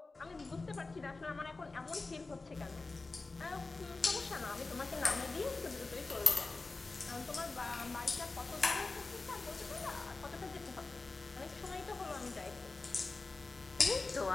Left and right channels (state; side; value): quieter; right; 3.6 dB